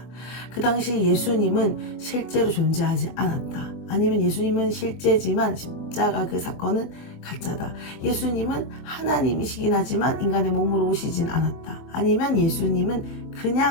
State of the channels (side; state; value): right; late; 24 ms